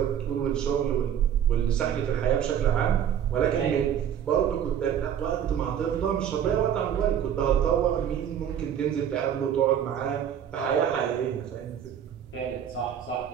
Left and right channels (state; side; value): quieter; left; 9.2 dB